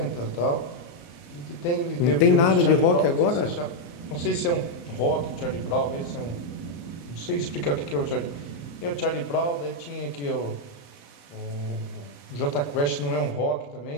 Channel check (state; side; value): late; right; 35 ms